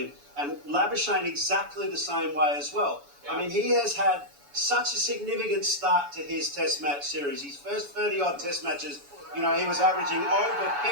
and Labuschagne exactly the same way as well. I mean, he has had such a significant start to his Test match series. His first 30-odd Test matches, he was averaging over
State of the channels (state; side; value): late; left; 7.0 ms